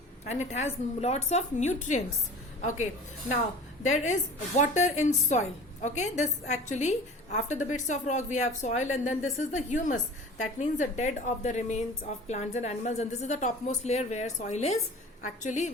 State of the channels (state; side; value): normal; both; correlation 0.40